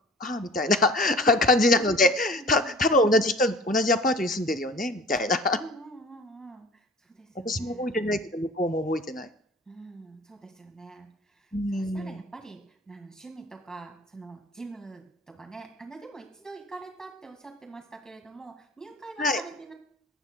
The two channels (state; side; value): normal; both; correlation 0.45